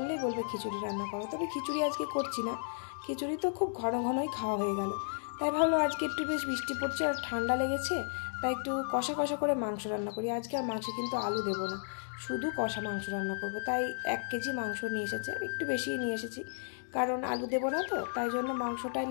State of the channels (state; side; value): silent; right; digital silence